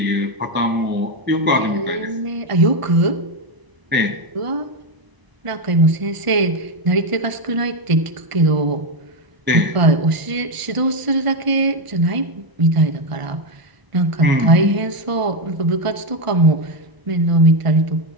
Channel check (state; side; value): late; left; 1.4 ms